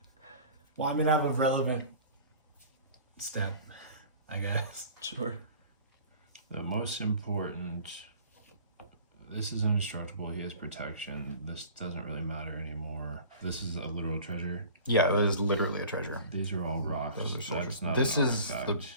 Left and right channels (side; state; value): both; inverted; correlation -0.44